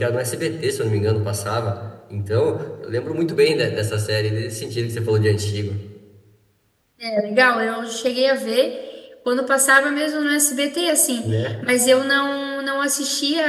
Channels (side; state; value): both; identical; correlation 1.00